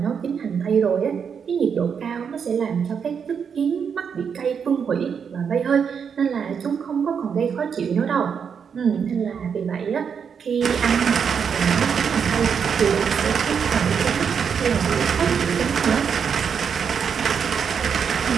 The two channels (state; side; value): quieter; left; 6.9 dB